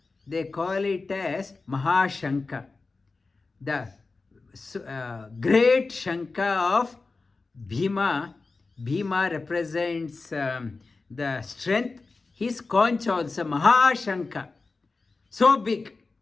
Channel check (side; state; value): right; quieter; 3.9 dB